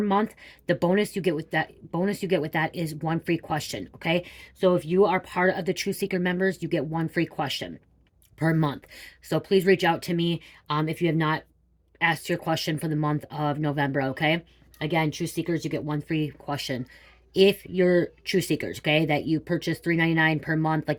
The bonus you get with that is one free question. Okay, so if you are part of the True Seeker members, you get one free question per month. So please reach out to me if you have not asked your question for the month of November. Okay, again, True Seekers, you get one free question if you're True Seekers. Okay, that you purchase $3.99 per month,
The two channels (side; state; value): both; identical; correlation 1.00